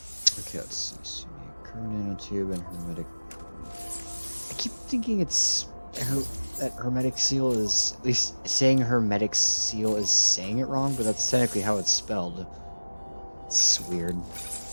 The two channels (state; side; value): inverted; both; correlation -1.00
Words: Okay, let's see. So we need current nanotube and hermetic. I keep thinking it's that hermetic seal is, at least saying hermetic seal is saying it wrong, but that's technically how it's spelled. It's weird.